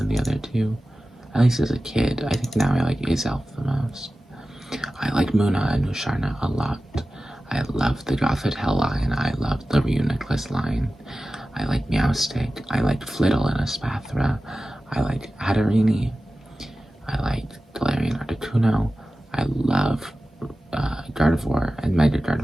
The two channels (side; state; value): both; normal; correlation 0.95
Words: the other two, at least as a kid. I think now I like Azelf the most. I like Muna and Musharna a lot. I love the Gothitelle line. I love the Reuniclus line. I like Meowstic. I like Flittle and Espathra. I like Hatterini. I like Galarian Articuno. I love Gardevoir and Mega